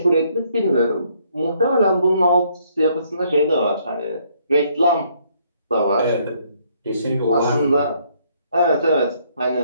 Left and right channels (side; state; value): both; inverted; correlation -0.68